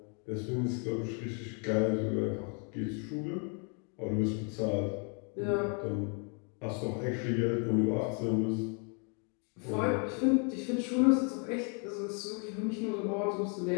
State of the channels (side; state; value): right; quieter; 38.8 dB